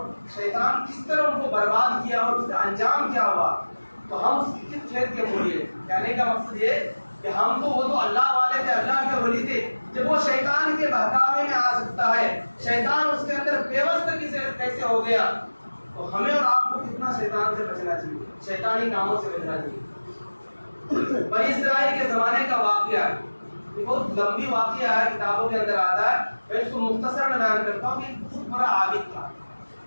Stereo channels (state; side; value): inverted; both; correlation -1.00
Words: شیطان کس طرح ان کو برباد کیا اور اس کا انجام کیا ہوا، تو ہم اس کی کس کھیت کے مولیے. کہنے کا مقصد یہ کہ ہم تو وہ تو اللہ والے تھے، اللہ کے ولی تھے. جب وہ شیطان کے بہکاوے میں آ سکتا ہے، شیطان اس کے اندر پیوست کیسے ہو گیا، تو ہمیں اور آپ کو کتنا شیطان سے بچنا چاہیے، شیطانی کاموں سے بچنا چاہیے. بنی اسرائیل کے زمانے کا واقعہ ہے، یہ بہت لمبی واقعہ ہے، کتابوں کے اندر آتا ہے. میں اس کو مختصر بیان کرتا ہوں کہ ایک بہت بڑا عابد تھا.